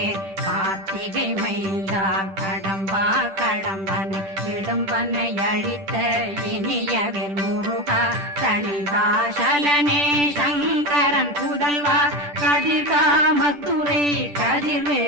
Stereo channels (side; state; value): left; late; 10 ms